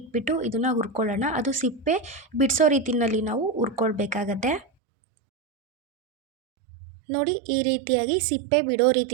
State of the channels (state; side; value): drops out; left; at 4.7 s